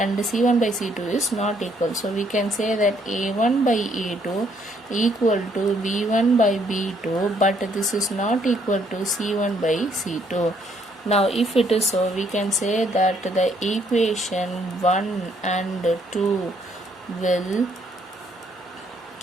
c1 by c2 is not equal, so we can say that a1 by a2 equal to b1 by b2, but this is not equal to c1 by c2. Now if it is so, we can say that the equation 1 and 2 will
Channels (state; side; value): normal; both; correlation 0.68